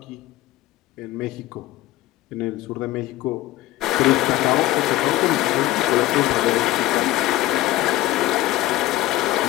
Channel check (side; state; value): right; quieter; 16.2 dB